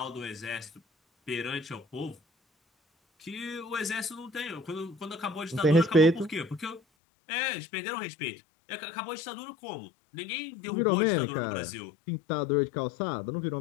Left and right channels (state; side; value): drops out; right; at 6.8 s